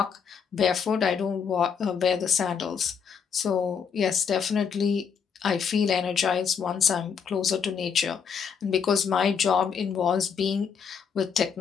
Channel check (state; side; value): quieter; right; 6.7 dB